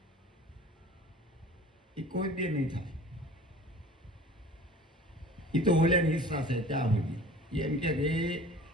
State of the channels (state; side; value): normal; both; correlation 0.44